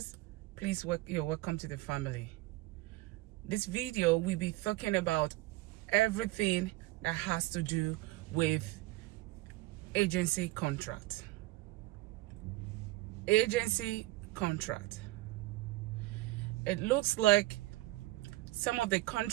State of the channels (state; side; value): quieter; left; 18.6 dB